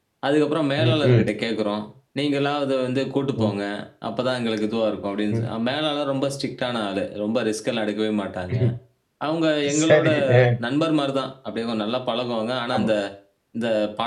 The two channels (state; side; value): identical; both; correlation 1.00